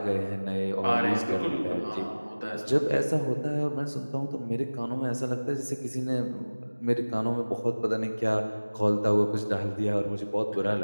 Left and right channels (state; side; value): inverted; both; correlation -1.00